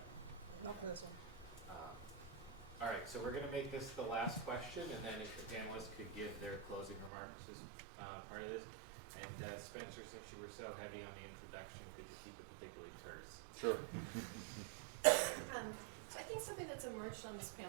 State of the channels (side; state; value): left; drops out; at 7.1 s